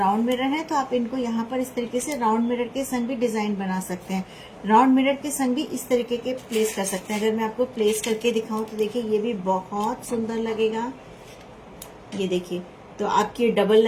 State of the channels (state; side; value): identical; both; correlation 1.00